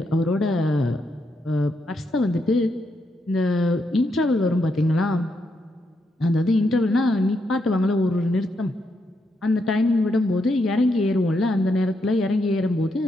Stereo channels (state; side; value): normal; both; correlation 0.80